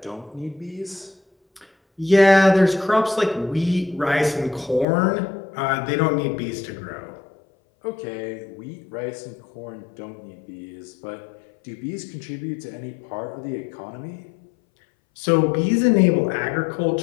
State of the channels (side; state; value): right; drops out; at 4.9 s